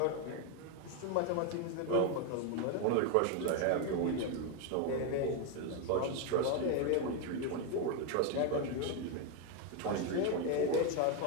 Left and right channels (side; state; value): both; different; correlation 0.01